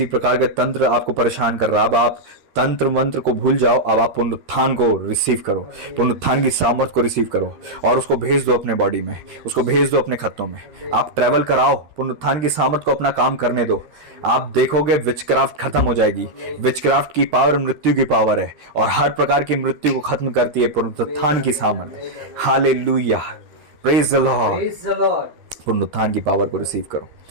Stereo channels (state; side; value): late; left; 13 ms